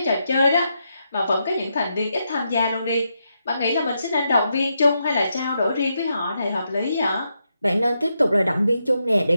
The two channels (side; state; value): both; inverted; correlation -0.83